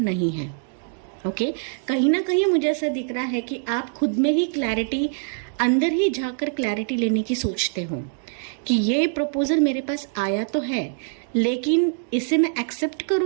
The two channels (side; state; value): left; silent; digital silence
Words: है। ओके, कहीं ना कहीं मुझे ऐसा दिख रहा है कि आप खुद में ही क्लैरिटी, अंदर ही जाकर क्लैरिटी लेने की सोचते हो कि ये प्रपोजल मेरे पास आया तो है, लेकिन इसे मैं एक्सेप्ट